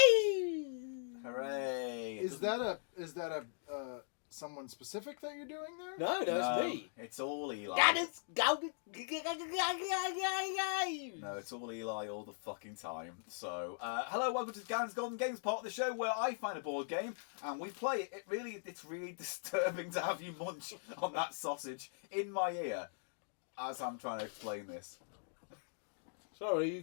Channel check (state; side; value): silent; right; digital silence